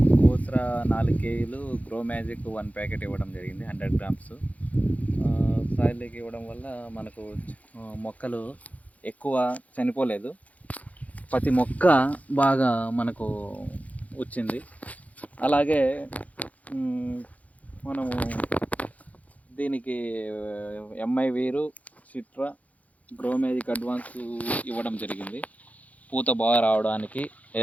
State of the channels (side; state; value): right; late; 0.071 ms